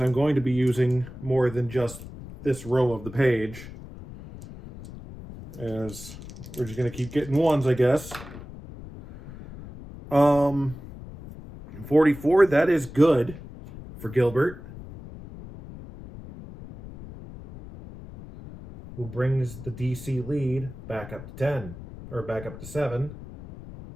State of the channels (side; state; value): left; noise; rumble, 14 dB below the sound